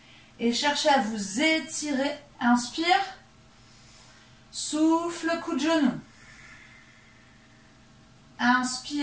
Et cherchez à vous étirer. Inspire. Souffle, coup de genou.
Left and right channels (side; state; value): both; identical; correlation 1.00